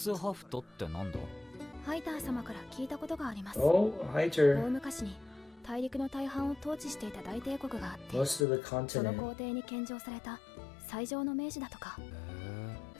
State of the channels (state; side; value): drops out; right; at 8.5 s